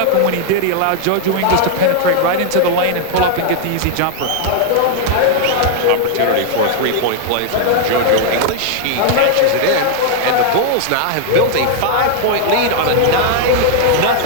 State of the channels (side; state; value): both; different; correlation 0.00